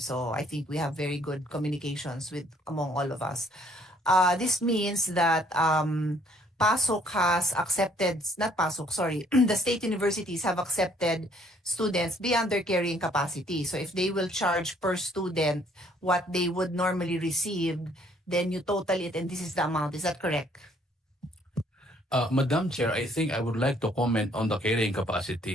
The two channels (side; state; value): both; normal; correlation 0.63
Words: So I think we have very good communications with among all of us. This means that Pasok has accepted, not Pasok, sorry, the state universities have accepted students beyond their carrying capacity. So if they will charge per student what they would normally receive, then you total it and this is the amount. Is that correct? Madam Chair, I think I would like to comment on the carrying